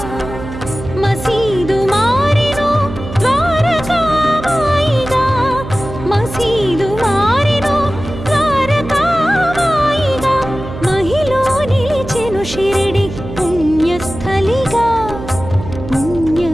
మసీదు మారెను ద్వారకామాయిగా మసీదు మారెను ద్వారకామాయిగా మహిలో నిలిచెను షిరిడి పుణ్యస్థలిగా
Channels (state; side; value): noise; right; hum, 11 dB below the sound